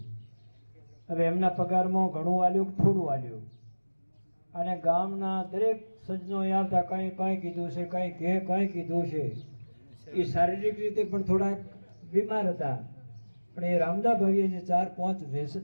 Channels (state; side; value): inverted; both; correlation -1.00